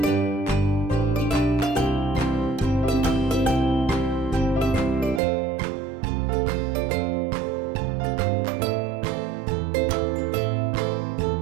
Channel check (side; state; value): left; drops out; at 5.2 s